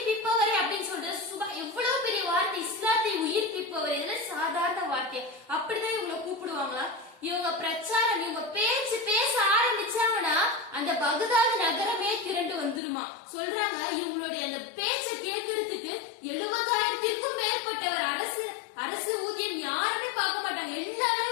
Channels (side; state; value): right; drops out; at 12.8 s